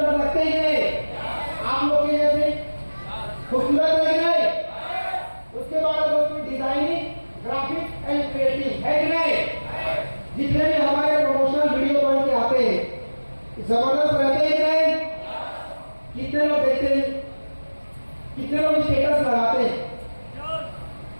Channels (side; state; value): both; inverted; correlation -1.00